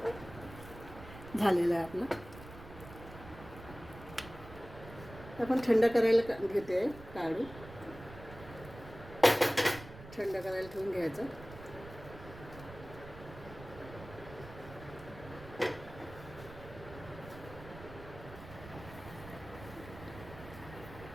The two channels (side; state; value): right; noise; rumble, 15 dB below the sound